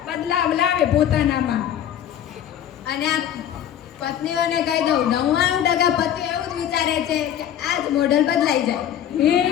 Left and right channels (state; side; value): quieter; right; 10.3 dB